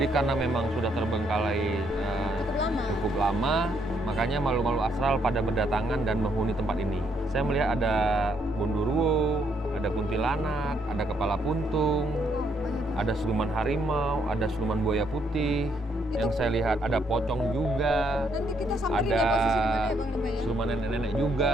karena memang sudah terbengkalai cukup lama, makanya makhluk-makhluk astral pada berdatangan dan menghuni tempat ini. Saya melihat ada Gondoruo, ada kuntilanak, ada kepala puntung, ada siluman harimau, ada siluman buaya putih. Yang saya lihat ada pocong juga, Nanti kita samperin ada ya posisi di mana ya, Panglima ya? siluman nenek-nenek juga.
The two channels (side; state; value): both; normal; correlation 0.73